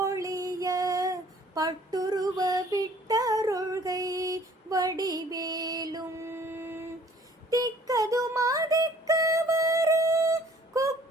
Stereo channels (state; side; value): normal; both; correlation 0.55